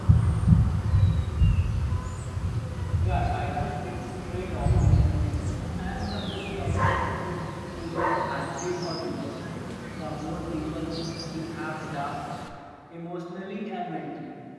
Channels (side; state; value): both; identical; correlation 1.00